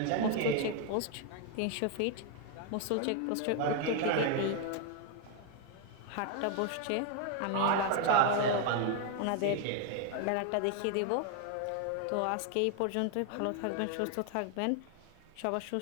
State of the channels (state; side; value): different; both; correlation 0.01